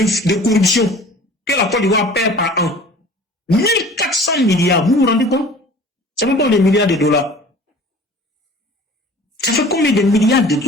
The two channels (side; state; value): both; normal; correlation 0.45